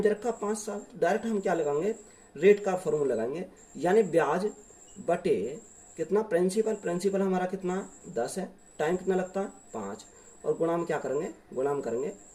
दे रखा 5 साल। तो डायरेक्ट हम क्या लगाएंगे, रेट का फॉर्मूला लगाएंगे, यानी ब्याज बटे कितना, प्रिंसिपल हमारा कितना 10 है, टाइम कितना लगता है 5, और गुणा में क्या करेंगे, गुणा में करेंगे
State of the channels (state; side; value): identical; both; correlation 1.00